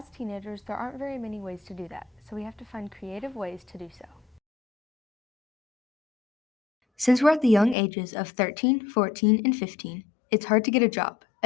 teenagers, there aren't very many ways to do that, so we have to find creative ways to do so. Since we're at the young ages of 13, 14, and 15, it's hard to get a job,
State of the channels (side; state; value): right; drops out; at 7.8 s